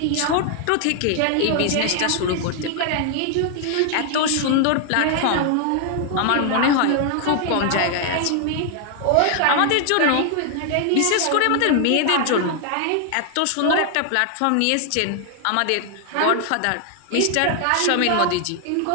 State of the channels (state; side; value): different; both; correlation 0.00